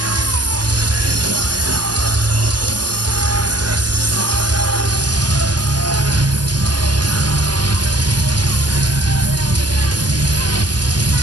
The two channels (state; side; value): late; left; 0.69 ms